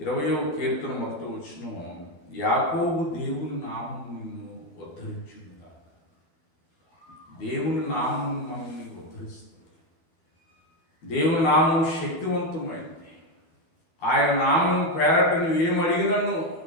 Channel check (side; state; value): right; late; 12 ms